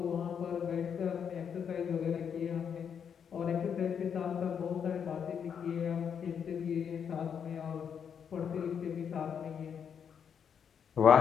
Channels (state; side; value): quieter; right; 7.5 dB